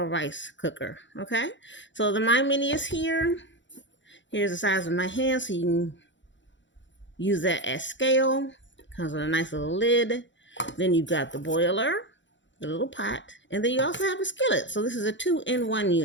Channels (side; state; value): right; late; 0.54 ms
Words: rice cooker. Okay. So the My Mini is here. Here's the size of my hand so you can use that as scale. Comes with a nice little lid. Then you've got the boiler, the little pot, and then you also have a skillet. So this is a 2-in-1